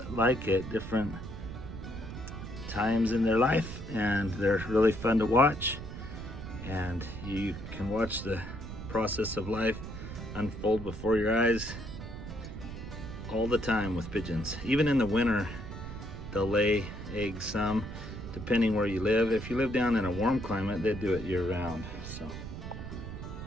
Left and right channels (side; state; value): right; noise; rumble, 9 dB below the sound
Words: like at different times in their life, and they're really fun to watch. And you can watch the process of life unfold before your eyes all the time with pigeons. Even in the winter, they'll lay eggs some. depending where you live. If you live down in a warm climate, they do it year round. So,